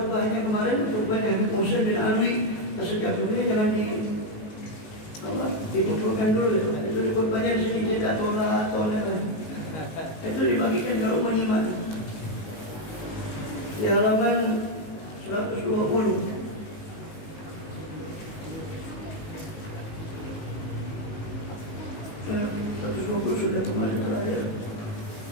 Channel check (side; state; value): right; late; 19 ms